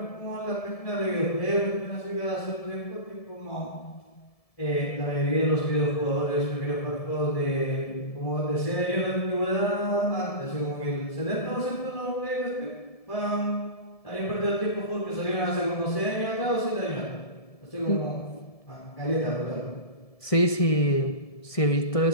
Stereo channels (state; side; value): late; right; 1.7 ms